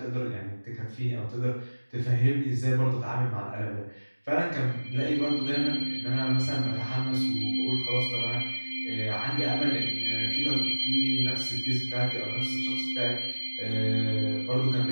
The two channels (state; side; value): inverted; both; correlation -1.00